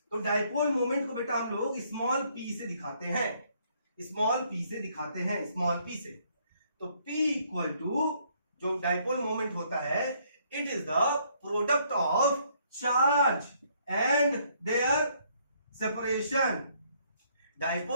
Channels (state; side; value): inverted; both; correlation -0.67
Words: तो dipole moment को बेटा हम लोग स्मॉल p से दिखाते हैं, स्मॉल p से दिखाते हैं, स्मॉल p से। तो p इक्वल टू जो डाइपोल मोमेंट होता है, it is the product of charge and their separation.